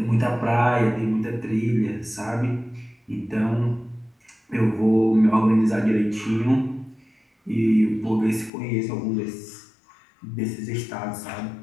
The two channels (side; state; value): right; drops out; at 8.5 s